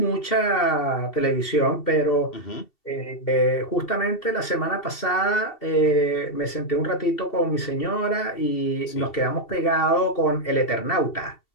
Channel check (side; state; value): right; late; 2.7 ms